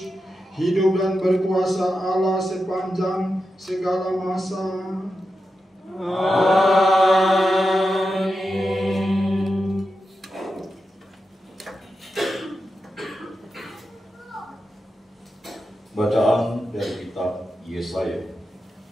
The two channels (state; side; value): normal; both; correlation 0.89